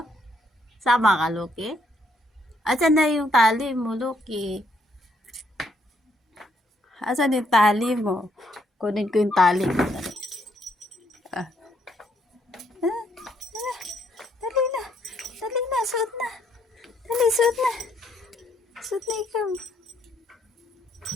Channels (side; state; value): both; normal; correlation 0.72